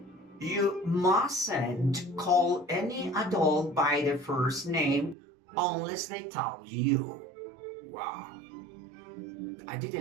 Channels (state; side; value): drops out; left; at 5.2 s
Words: You mustn't call any adult by their first name unless they tell you. Wow, I